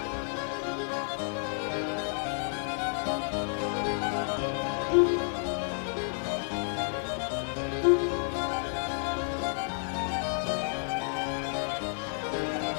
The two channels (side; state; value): right; silent; digital silence